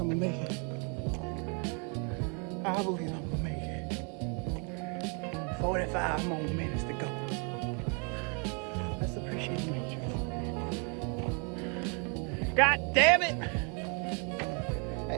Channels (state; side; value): quieter; left; 36.3 dB